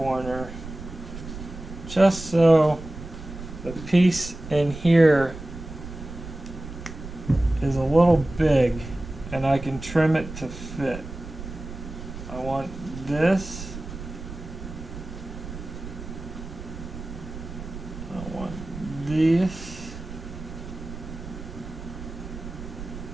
just so the piece in here is a little big and I can trim it to fit. I want this. I want this.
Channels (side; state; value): right; noise; rumble, 11 dB below the sound